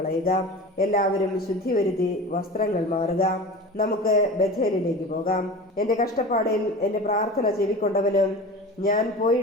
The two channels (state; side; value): normal; both; correlation 0.34